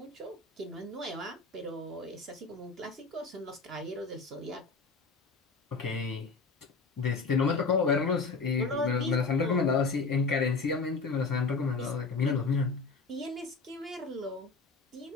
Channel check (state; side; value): quieter; right; 4.2 dB